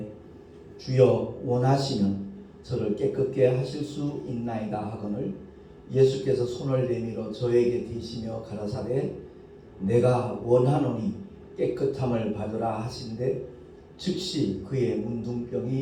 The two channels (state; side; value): identical; both; correlation 1.00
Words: 주여 원하시면 저를 깨끗게 하실 수 있나이다 하거늘 예수께서 손을 내밀어 저에게 대시며 가라사대 내가 원하노니 깨끗함을 받으라 하신대 즉시 그의